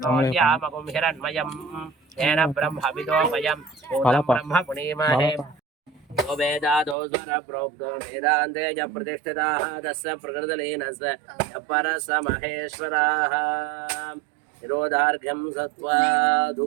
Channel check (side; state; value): left; drops out; at 7.0 s